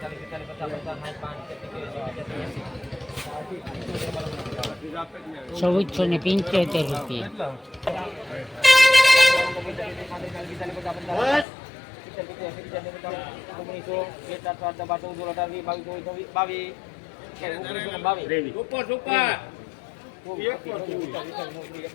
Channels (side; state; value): right; drops out; at 11.5 s